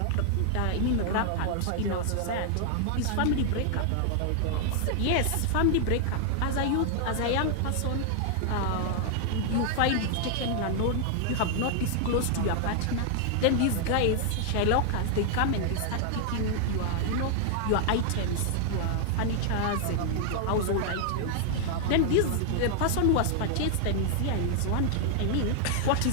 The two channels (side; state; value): both; different; correlation 0.00